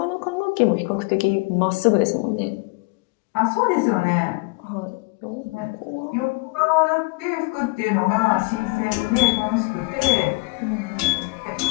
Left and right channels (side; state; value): right; quieter; 26.8 dB